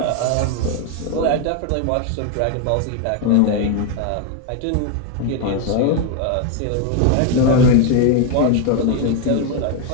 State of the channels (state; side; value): different; both; correlation 0.01